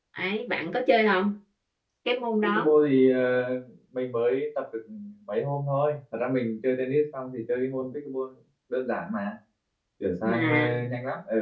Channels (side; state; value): both; identical; correlation 1.00